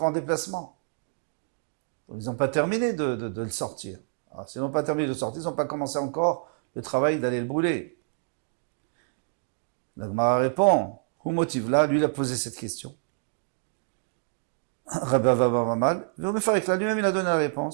en déplacement. Donc, ils n'ont pas terminé de le sortir. Alors, s'ils n'ont pas terminé de le sortir, ils n'ont pas commencé encore le travail d'aller le brûler. La Gemara répond, où motive là, lui il a posé cette question. Rabbi Abba Mamal, lui-même il a donné la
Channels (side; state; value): left; silent; digital silence